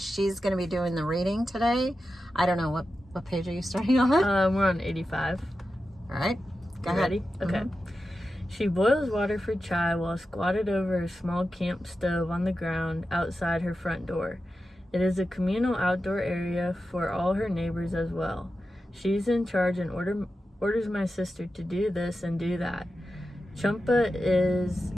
going to be doing the reading today. I don't know, what page are you starting on? We're on 85. All right, go ahead. Ready? Okay. She boils water for chai while squatted over a small camp stove on the ground outside her front door. It is a communal outdoor area for all her neighbors as well. She's in charge and orders my sister to do this and do that. Champa is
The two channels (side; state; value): both; normal; correlation 0.91